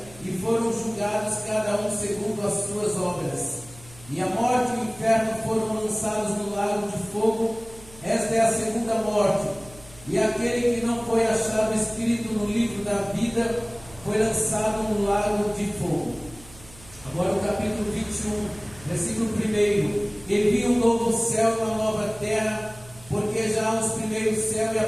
e foram julgados cada um segundo as suas obras. E a morte e o inferno foram lançados no lago de fogo. Esta é a segunda morte. E aquele que não foi achado escrito no livro da vida foi lançado no lago de fogo. Agora o capítulo 21, versículo 1. E vi um novo céu e uma nova terra, porque já os primeiros céus e a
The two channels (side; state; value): right; noise; hum, 22 dB below the sound